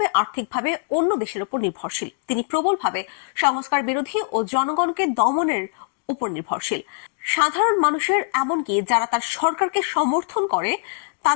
আর্থিকভাবে অন্য দেশের উপর নির্ভরশীল। তিনি প্রবলভাবে সংস্কার বিরোধী ও জনগণকে দমনের উপর নির্ভরশীল। সাধারণ মানুষের, এমনকি যারা তার সরকারকে সমর্থন করে,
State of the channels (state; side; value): silent; right; 64 dB below the other